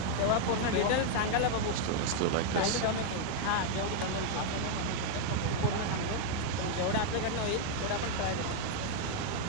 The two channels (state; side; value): different; both; correlation 0.00